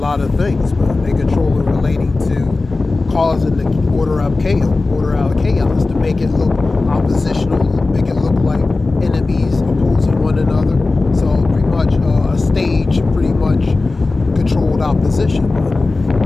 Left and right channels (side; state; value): right; quieter; 3.5 dB